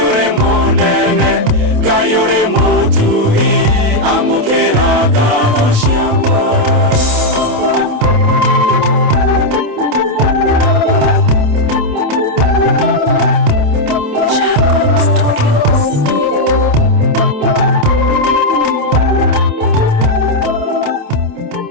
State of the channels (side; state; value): left; late; 28 ms